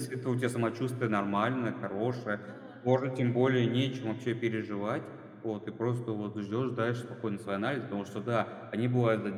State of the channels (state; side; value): identical; both; correlation 1.00